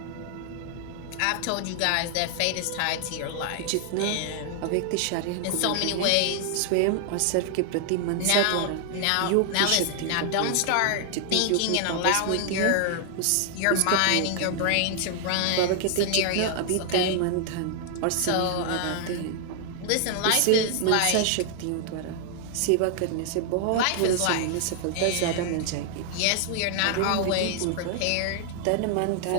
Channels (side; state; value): both; different; correlation 0.00